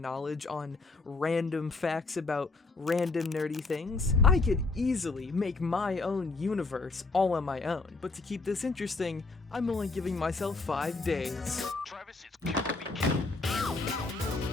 on random facts about random nerdy things. I could easily make my own universe all on my own. But to keep this interesting, I'm only giving myself 5 days. Travis, it's kill or be killed.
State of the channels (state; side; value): quieter; right; 3.7 dB